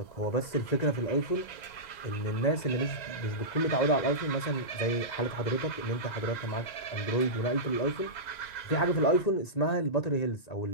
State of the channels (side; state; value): right; late; 2.0 ms